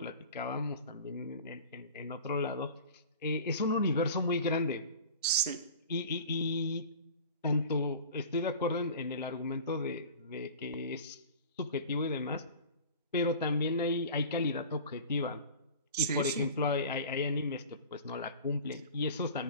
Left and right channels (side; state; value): both; inverted; correlation -0.39